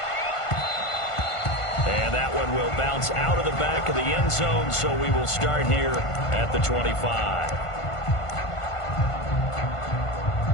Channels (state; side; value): late; right; 1.5 ms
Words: And that one will bounce out of the back of the end zone, so we will start here at the 25.